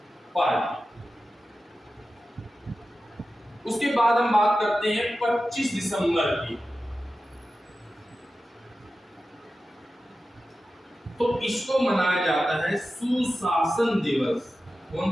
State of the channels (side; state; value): both; normal; correlation 0.93